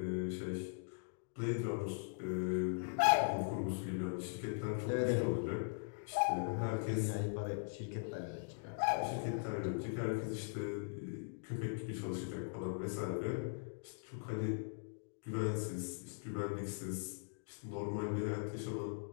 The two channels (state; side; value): silent; right; digital silence